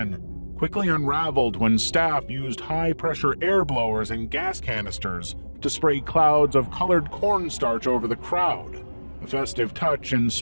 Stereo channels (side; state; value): both; inverted; correlation -1.00